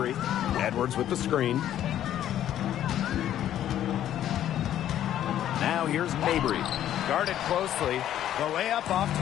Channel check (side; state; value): right; quieter; 11.5 dB